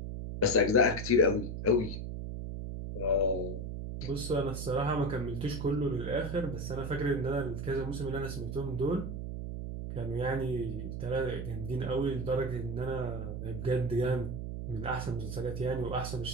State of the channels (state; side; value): noise; right; hum, 5 dB below the sound